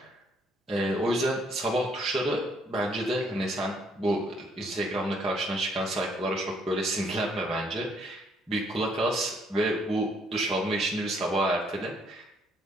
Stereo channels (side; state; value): both; normal; correlation 0.68